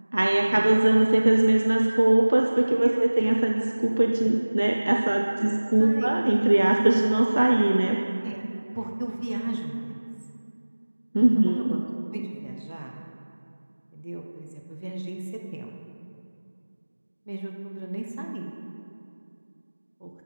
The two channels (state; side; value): inverted; both; correlation -1.00